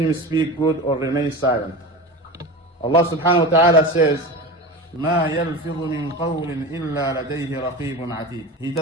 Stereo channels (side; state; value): both; normal; correlation 0.28